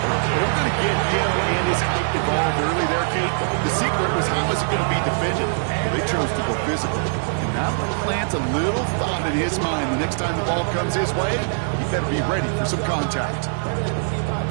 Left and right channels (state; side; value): silent; left; digital silence